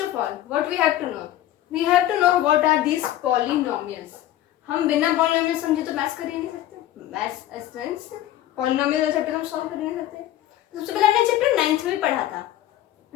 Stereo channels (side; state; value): right; quieter; 13.4 dB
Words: all, what we have to know? We have to know what are these polynomials. हम बिना polynomial समझे तो maths कर ही नहीं सकते. Maths polynomial वाला chapter हम solve कर ही नहीं सकते. सबसे पहले हमने चैप्टर 9th में पढ़ा था.